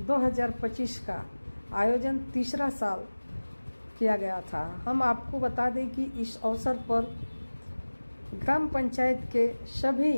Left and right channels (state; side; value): inverted; both; correlation -1.00